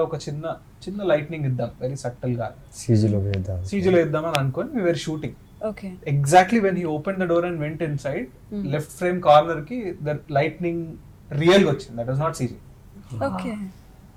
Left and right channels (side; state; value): both; identical; correlation 1.00